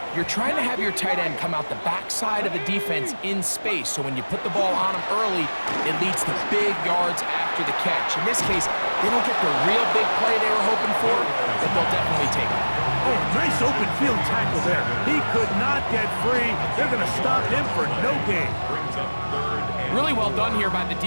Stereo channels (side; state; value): both; inverted; correlation -1.00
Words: you're trying to have your tight end come out the backside of the defense in space. So when you put the ball on him early, it leads to big yards after the catch. In this case, they don't get the real big play they were hoping for, but they'll definitely take it. Oh, nice open field tackle there. He could not get free. They're going to stop him for no gain. Brings up third and Really well done here by the